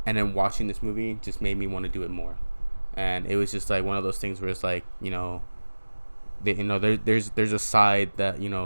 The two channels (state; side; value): inverted; both; correlation -1.00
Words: and then watching this movie just made me want to do it more. And it was just one of those things where it's there's a side that